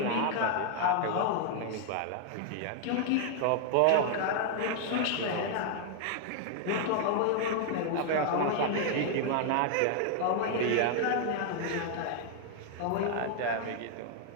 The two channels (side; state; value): both; different; correlation 0.00